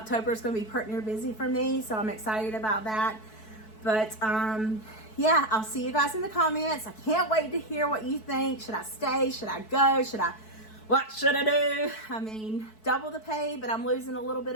is going to be pretty busy for me. So I'm excited about that. But yeah, I'll see you guys in the comments. I can't wait to hear what you think. Should I stay? Should I go? What should I do? I mean, double the pay, but I'm losing a little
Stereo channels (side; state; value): right; late; 4.6 ms